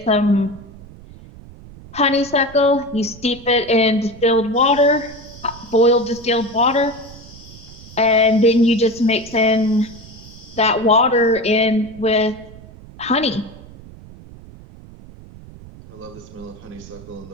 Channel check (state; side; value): noise; right; rumble, 19 dB below the sound